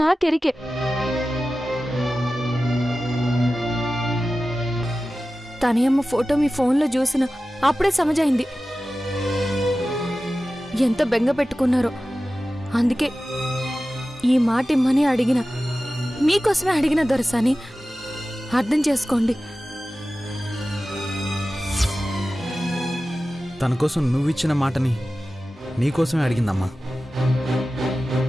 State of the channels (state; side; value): normal; both; correlation 0.95